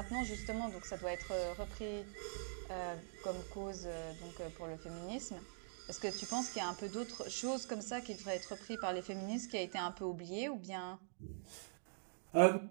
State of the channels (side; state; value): left; silent; digital silence